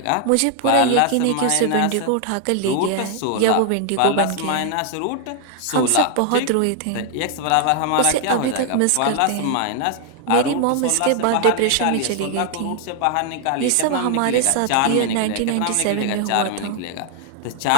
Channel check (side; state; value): both; different; correlation 0.00